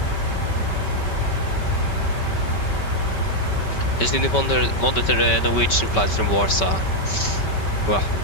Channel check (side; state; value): right; late; 5.2 ms